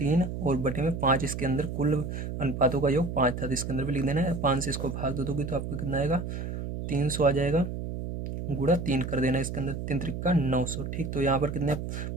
और बटे में 5, इसके अंदर कुल अनुपातों का योग 5 था, तो इसके अंदर भी लिख देना है। 5 से इसको भाग दे दोगे तो आपको कितना आएगा, 300 आ जाएगा, गुणा 3 कर देना इसके अंदर, 3 त्रिका 900। ठीक, तो यहाँ पर कितने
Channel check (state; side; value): noise; right; hum, 5 dB below the sound